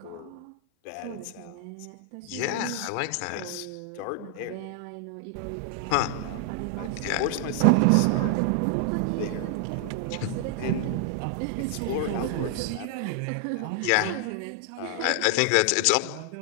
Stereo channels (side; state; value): both; different; correlation 0.00